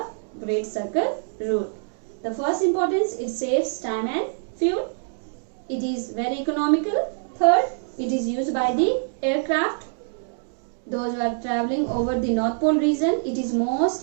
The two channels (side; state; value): left; silent; digital silence